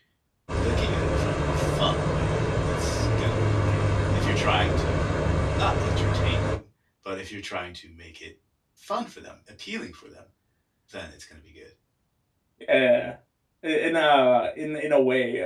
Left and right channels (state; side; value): identical; both; correlation 1.00